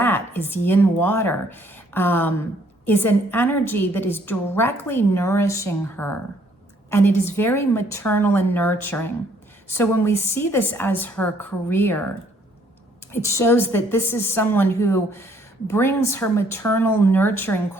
is yin water, is an energy that is directly nourishing her, and it is very maternal and nurturing. So when we see this as her career, it shows that this is someone who brings her maternal nurturing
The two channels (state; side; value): normal; both; correlation 0.65